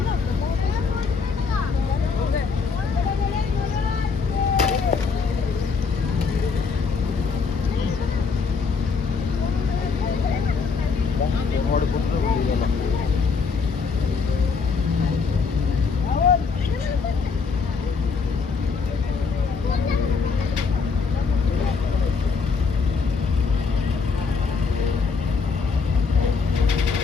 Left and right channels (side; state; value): right; quieter; 5.1 dB